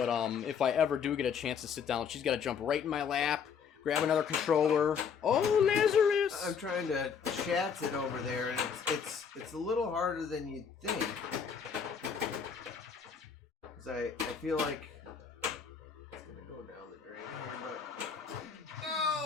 if I ever do get a chance to sit down, she's got to jump right in my lap, grab another controller. Oh, Lazarus! I'm trying to chat it over there, and it's a little harder than you'd think. Cause I feel like it's gonna go down the drain here, but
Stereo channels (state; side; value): quieter; right; 6.7 dB